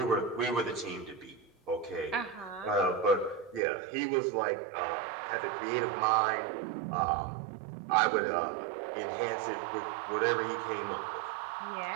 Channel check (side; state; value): left; drops out; at 3.6 s